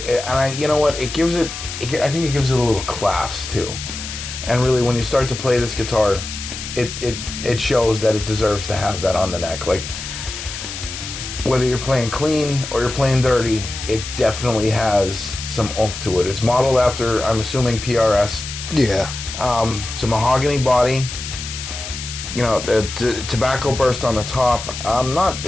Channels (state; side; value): noise; left; hiss, 8 dB below the sound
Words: you know what? It gives it, I think it gives it a little class too. And really, when you start to play this guitar, it shows that it deserves to have that on the neck. Like, whether you're playing clean or you're playing dirty, it definitely has some oomph to it. It's modeled after, I'm assuming, PRS. Yeah. It's a mahogany body. You know, the tobacco burst on the top.